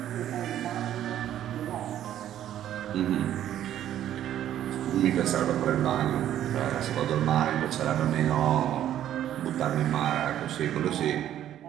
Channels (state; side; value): quieter; left; 11.5 dB